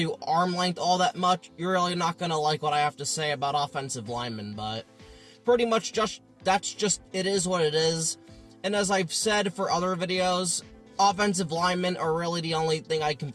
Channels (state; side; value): identical; both; correlation 1.00